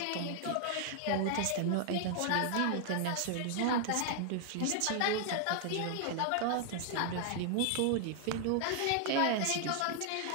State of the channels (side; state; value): both; different; correlation 0.00